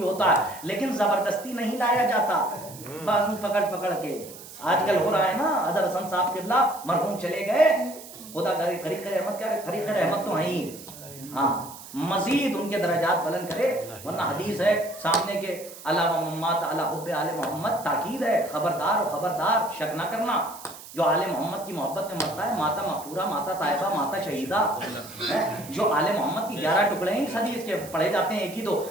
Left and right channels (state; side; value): noise; right; hiss, 16 dB below the sound